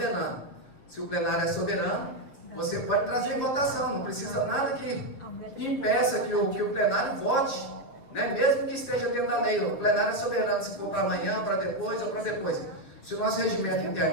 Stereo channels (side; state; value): right; late; 7.5 ms